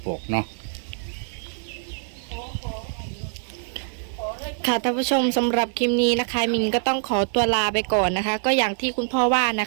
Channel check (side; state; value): left; silent; digital silence